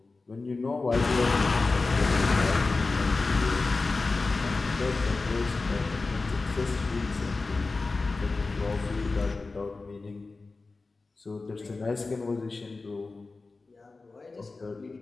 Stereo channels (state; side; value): quieter; right; 3.7 dB